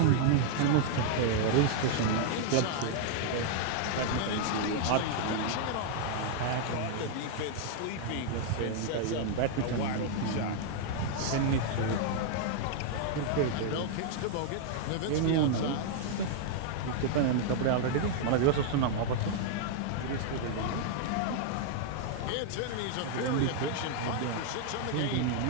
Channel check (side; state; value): both; different; correlation 0.00